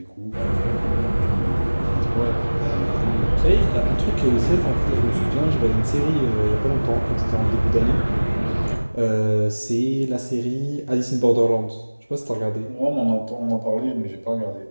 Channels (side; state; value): both; inverted; correlation -1.00